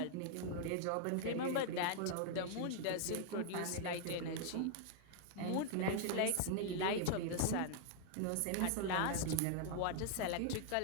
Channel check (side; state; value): both; different; correlation 0.00